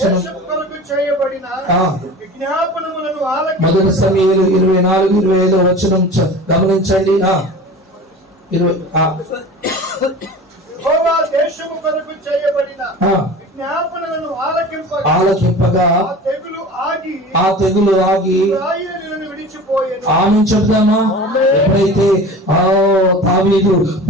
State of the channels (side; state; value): both; normal; correlation 0.37